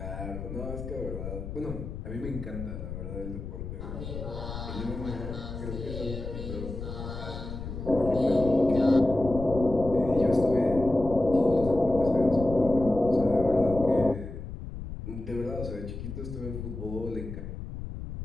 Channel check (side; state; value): left; noise; rumble, 8 dB below the sound